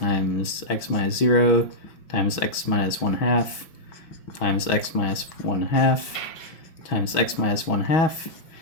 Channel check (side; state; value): right; late; 6.2 ms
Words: x minus 0 times x minus 1/2 times x minus 1/2 times x minus